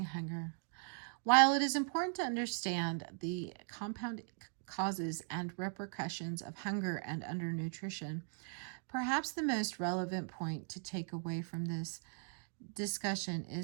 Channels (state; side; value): silent; left; 52 dB below the other